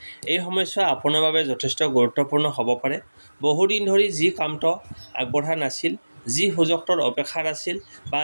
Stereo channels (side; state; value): both; inverted; correlation -1.00